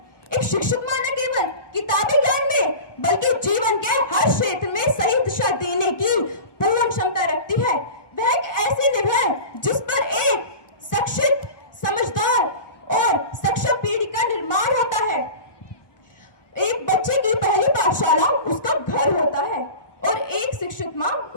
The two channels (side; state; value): right; late; 1.2 ms